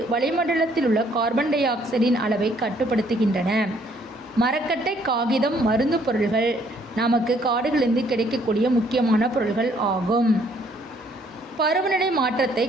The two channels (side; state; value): both; normal; correlation 0.65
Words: வளிமண்டலத்தில் உள்ள கார்பன் டை ஆக்சைடின் அளவை கட்டுப்படுத்துகின்றன. மரக்கட்டை, காகிதம், மருந்து பொருள்கள் நமக்கு காடுகளிலிருந்து கிடைக்கக்கூடிய முக்கியமான பொருள்கள் ஆகும். பருவநிலை மாற்றத்தை